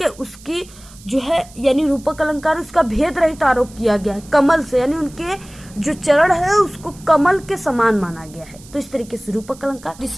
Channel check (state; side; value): noise; right; hiss, 22 dB below the sound